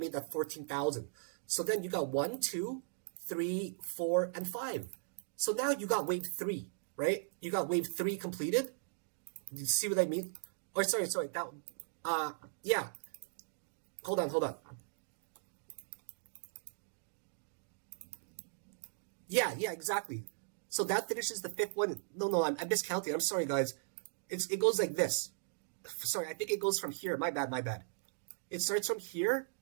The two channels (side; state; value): left; silent; digital silence